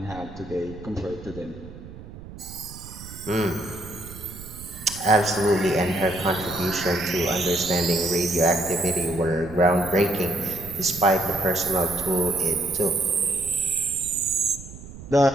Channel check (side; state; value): right; noise; rumble, 15 dB below the sound